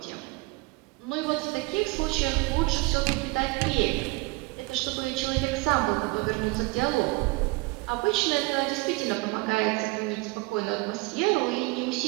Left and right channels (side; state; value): left; quieter; 24.2 dB